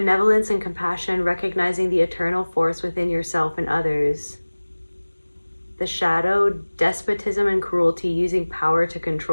and compassion, recognizing the eternal force within yourself and others. The shadow, despotism and cruelty, using power to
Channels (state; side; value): inverted; both; correlation -1.00